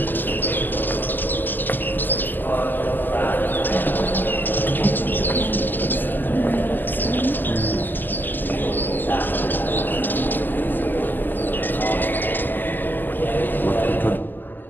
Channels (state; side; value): late; right; 0.089 ms